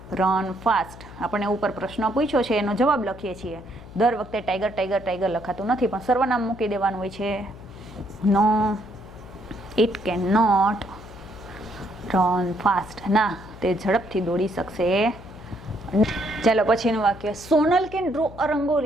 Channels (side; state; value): left; noise; hum, 17 dB below the sound